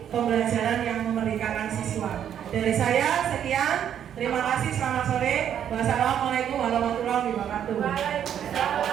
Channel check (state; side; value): quieter; left; 9.5 dB